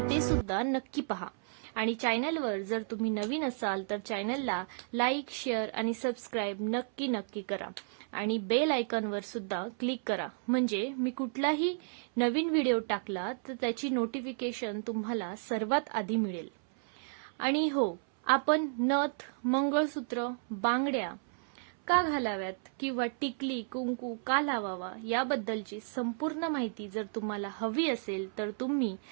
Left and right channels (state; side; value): silent; left; 56 dB below the other